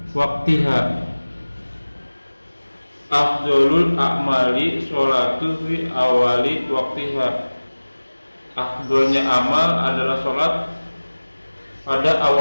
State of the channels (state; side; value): inverted; both; correlation -1.00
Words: waktiha. Afdolul a'mali sholatu fi awali waktiha. Afdolnya amal adalah sholat pada